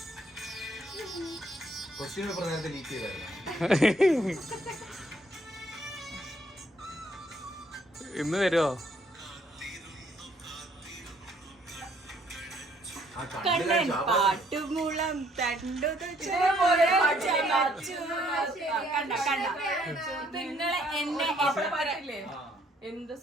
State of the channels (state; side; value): normal; both; correlation 0.65